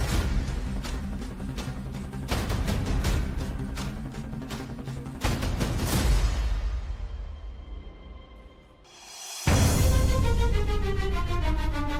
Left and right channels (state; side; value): identical; both; correlation 1.00